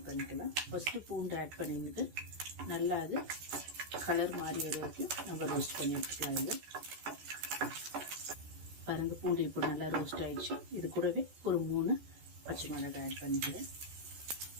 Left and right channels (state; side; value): late; left; 14 ms